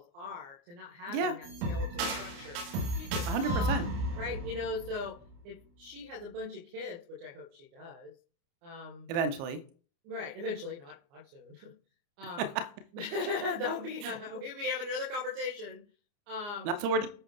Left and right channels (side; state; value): left; late; 29 ms